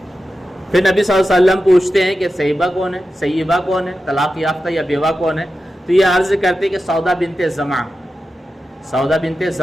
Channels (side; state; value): both; normal; correlation 0.91